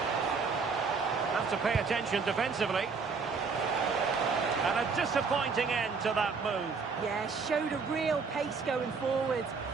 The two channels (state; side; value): quieter; left; 5.0 dB